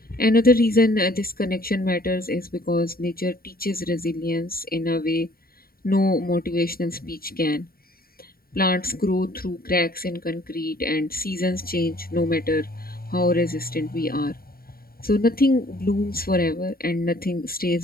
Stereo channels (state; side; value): late; right; 0.43 ms